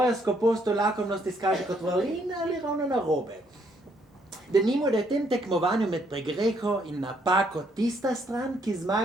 skopostjo lakomnost izkaže kot vrlina ali ravno narobe. Denimo, da je v tem tekmovanju med pregreho in napako tista stran, ki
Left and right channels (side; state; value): both; normal; correlation 0.70